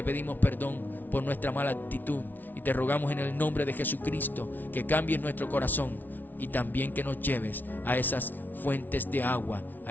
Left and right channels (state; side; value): late; right; 0.085 ms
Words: pedimos perdón por nuestra mala actitud y te rogamos en el nombre de Jesucristo que cambies nuestro corazón y también que nos lleves a esas fuentes de agua,